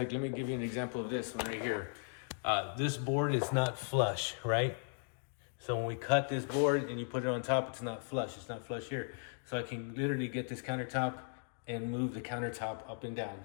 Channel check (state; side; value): silent; right; 53 dB below the other